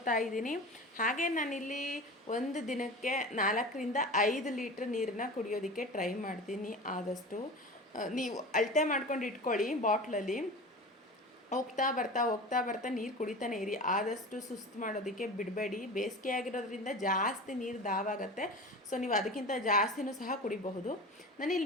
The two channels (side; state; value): both; normal; correlation 0.33